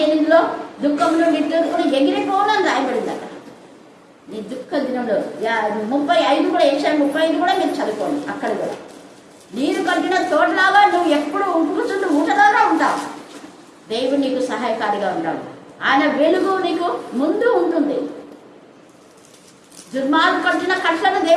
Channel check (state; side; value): identical; both; correlation 1.00